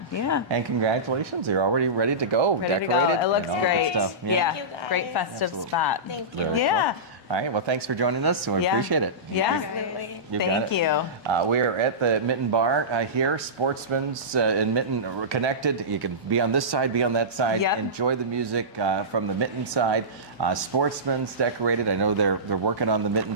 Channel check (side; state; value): both; normal; correlation -0.19